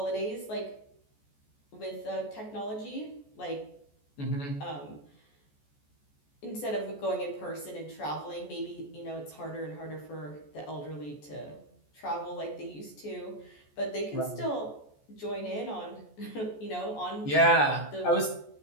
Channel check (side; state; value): right; late; 14 ms